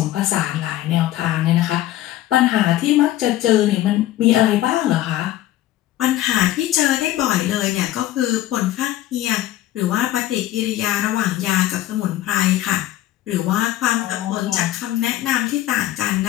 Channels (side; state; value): right; quieter; 14.1 dB